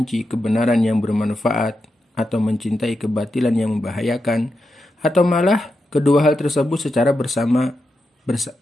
kebenaran yang bermanfaat, atau mencintai kebatilan yang membahayakan, atau malah kedua hal tersebut secara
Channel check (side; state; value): both; normal; correlation 0.87